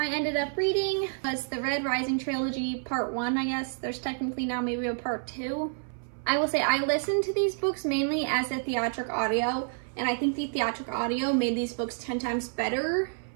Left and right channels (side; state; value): left; silent; 57 dB below the other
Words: ended up reading was the Red Rising trilogy, part 1, I guess. There's technically now maybe a part 2. I will say I listened to these books mainly as a theatric audio, and I think the theatric audio made these books 10 times better